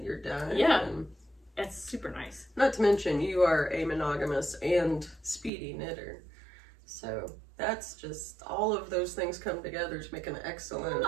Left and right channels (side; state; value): left; drops out; at 5.5 s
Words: you're done. Yeah. And It's super nice. not to mention, you are a monogamous and speedy knitter. So that's just, all of those things come together to make an excellent